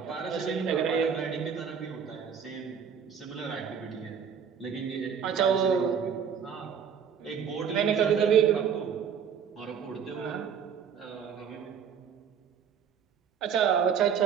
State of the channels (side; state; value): left; quieter; 7.4 dB